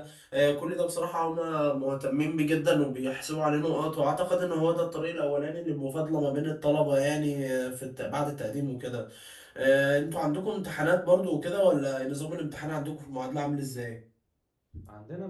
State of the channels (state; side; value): identical; both; correlation 1.00